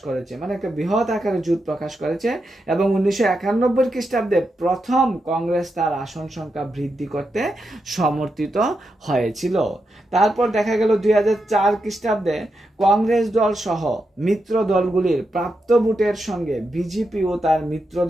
করেছে, মানে একটা বৃহৎ আকারে জোট প্রকাশ করেছে এবং 1991 খ্রিস্টাব্দে প্রথম কংগ্রেস তার আসন সংখ্যা বৃদ্ধি করতে সমর্থিত হয়েছিল। তারপর দেখা গেল 2004 খ্রিস্টাব্দে কংগ্রেস দল সহ মিত্র দলগুলির প্রাপ্ত ভোটের সঙ্গে বিজেপি ও তার মিত্র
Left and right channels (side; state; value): both; normal; correlation 0.86